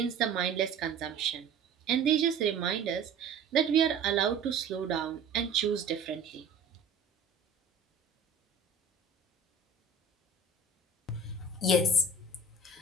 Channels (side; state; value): left; quieter; 4.0 dB